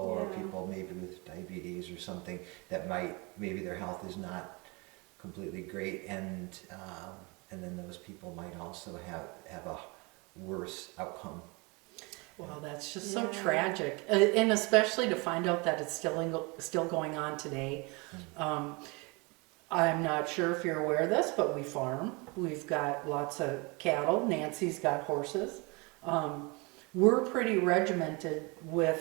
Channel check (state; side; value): quieter; left; 28.2 dB